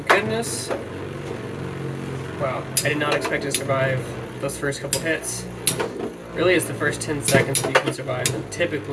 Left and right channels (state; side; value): identical; both; correlation 1.00